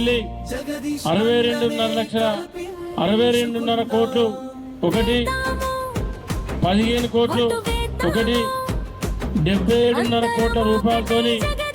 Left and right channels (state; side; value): identical; both; correlation 1.00